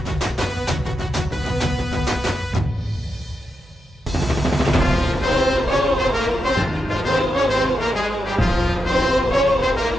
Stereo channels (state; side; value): normal; both; correlation 0.87